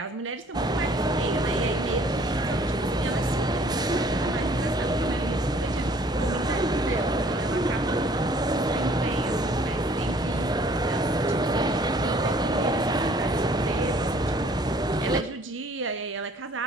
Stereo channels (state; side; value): normal; both; correlation 0.57